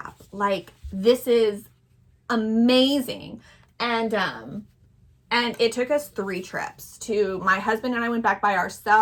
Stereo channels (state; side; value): identical; both; correlation 1.00